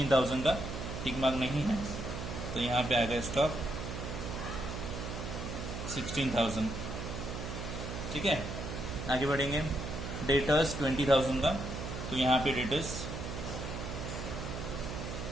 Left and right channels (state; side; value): noise; right; hum, 6 dB below the sound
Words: का टिक मार्क नहीं है, तो यहाँ पे आ गया स्टॉक 16,000। ठीक है, आगे बढ़ेंगे, डेटर्स 20,000 का, तो यहाँ पे डेटर्स